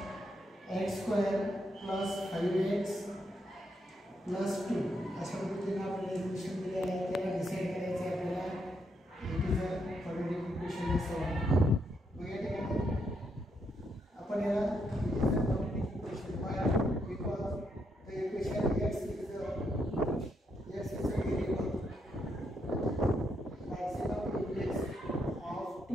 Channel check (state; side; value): normal; both; correlation 0.78